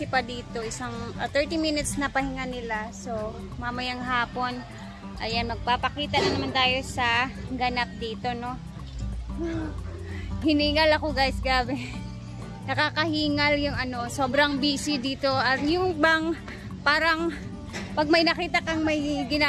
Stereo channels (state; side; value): identical; both; correlation 1.00